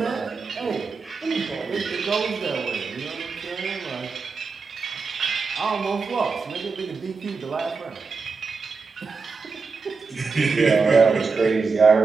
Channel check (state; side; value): quieter; left; 4.8 dB